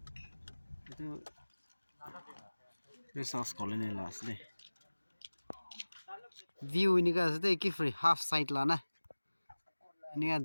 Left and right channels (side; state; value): both; inverted; correlation -1.00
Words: itu sauce colony lah asli view ini kan asli ki free half side lah na ini kan